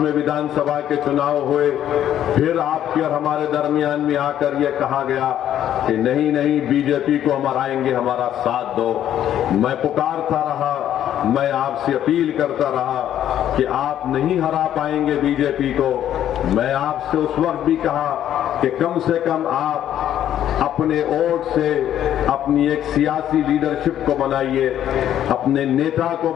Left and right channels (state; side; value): quieter; right; 11.0 dB